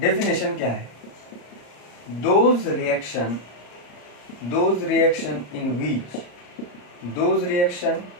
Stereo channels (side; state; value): right; late; 34 ms